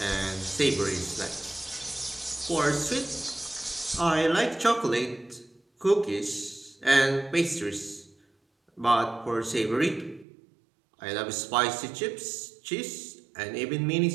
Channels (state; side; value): drops out; left; at 10.2 s